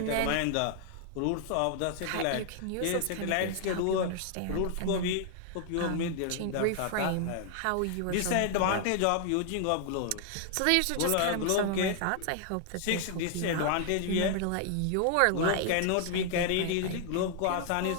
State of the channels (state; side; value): different; both; correlation 0.00